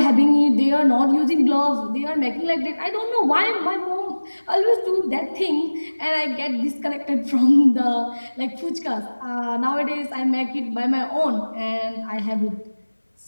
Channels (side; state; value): both; inverted; correlation -1.00